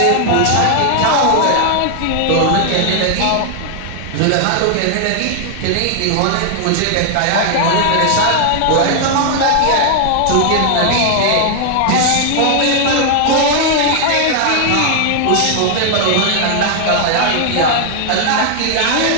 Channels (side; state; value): both; different; correlation 0.00